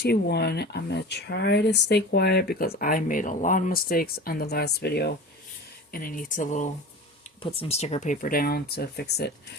I'm going to try to stay quiet because I made a lot of mistakes on the last video, and I need to put some sticker paper down to fix it.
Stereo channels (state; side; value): normal; both; correlation 0.34